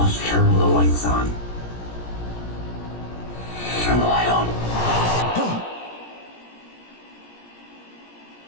turn the lights on. Turn the light on.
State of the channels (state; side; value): late; right; 17 ms